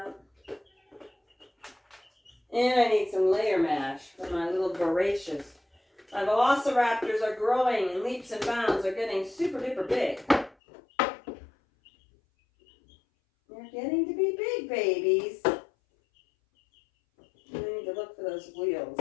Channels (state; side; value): drops out; right; at 10.6 s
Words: And I need some layer mash for my little voracious. My velociraptors are growing in leaps and bounds. They're getting super duper big. They're getting to be big babies. I need to look for those wheels